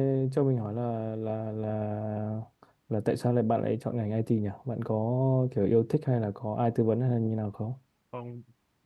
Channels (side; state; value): both; identical; correlation 1.00